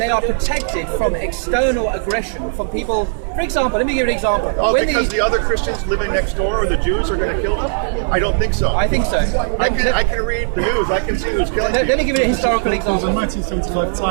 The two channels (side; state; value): left; silent; 68 dB below the other